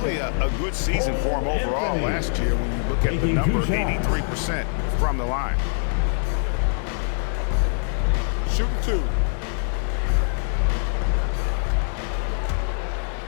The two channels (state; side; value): silent; right; 63 dB below the other